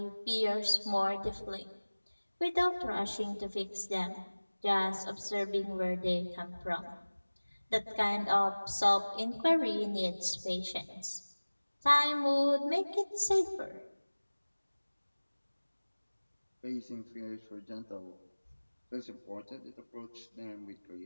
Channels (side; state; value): both; inverted; correlation -1.00